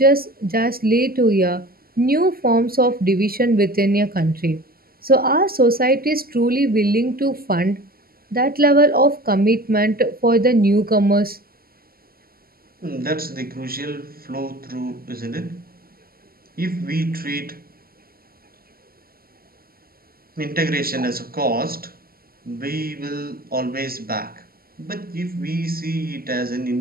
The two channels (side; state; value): left; late; 0.43 ms